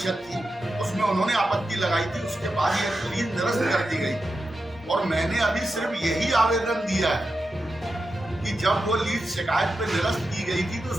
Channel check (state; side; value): normal; both; correlation 0.89